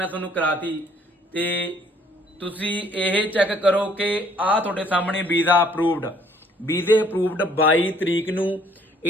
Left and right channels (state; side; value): normal; both; correlation 0.62